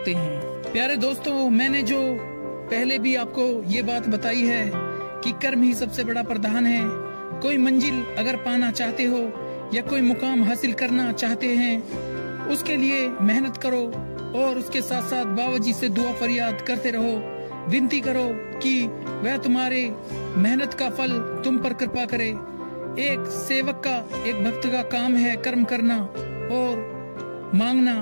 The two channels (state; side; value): inverted; both; correlation -1.00